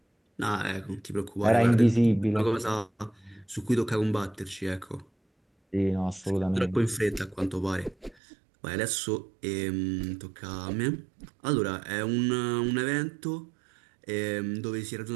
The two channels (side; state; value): left; drops out; at 8.2 s